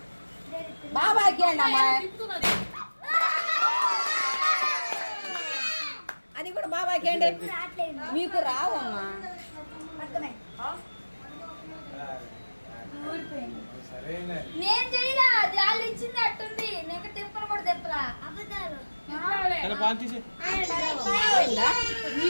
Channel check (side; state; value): both; inverted; correlation -1.00